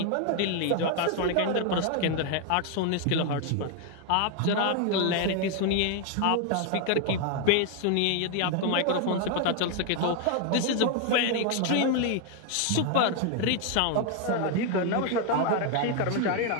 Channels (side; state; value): both; different; correlation 0.00